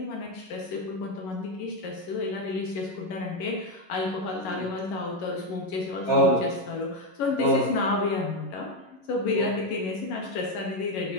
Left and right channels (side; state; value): right; late; 11 ms